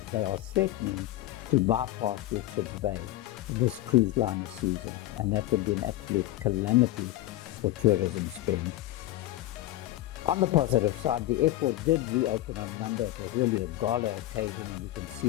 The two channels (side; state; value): right; quieter; 15.4 dB